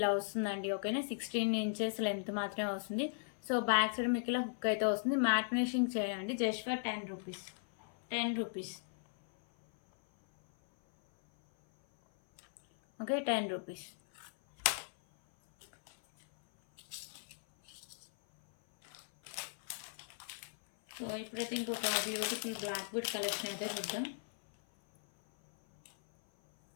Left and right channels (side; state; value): right; silent; 53 dB below the other